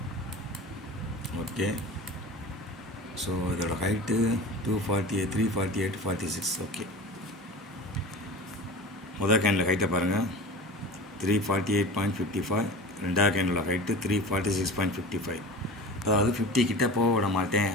ஓகே, ஸோ இதோட ஹைட்டு 248, 348, 46. ஓகே, முதல் கேண்டில் ஹைட்டை பாருங்கள், 348.55. ரெண்டாவது கேண்டில் ஹைட்டு 346.55. அதாவது 50 கிட்டே போக விட மாட்டேன்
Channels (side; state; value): both; normal; correlation 0.35